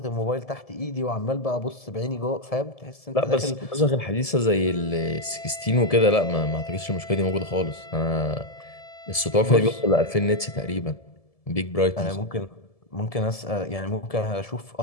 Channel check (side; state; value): right; late; 1.7 ms